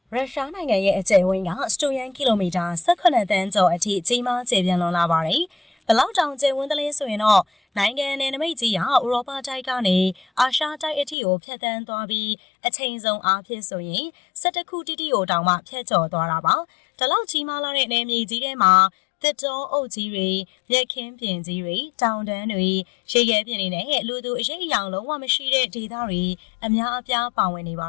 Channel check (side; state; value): right; drops out; at 11.2 s